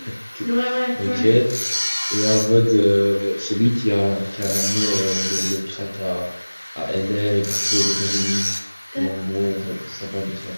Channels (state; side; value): inverted; both; correlation -1.00